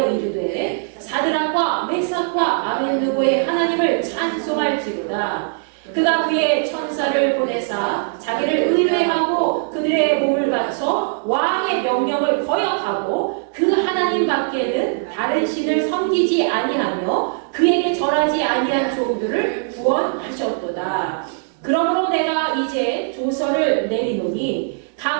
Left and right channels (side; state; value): left; silent; 59 dB below the other